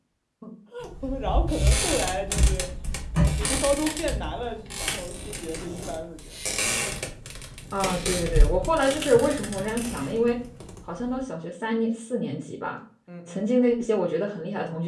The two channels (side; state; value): both; identical; correlation 1.00